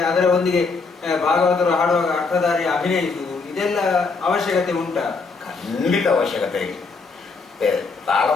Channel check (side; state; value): right; quieter; 4.4 dB